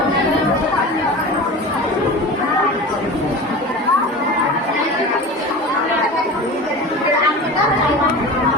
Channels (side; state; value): both; normal; correlation 0.33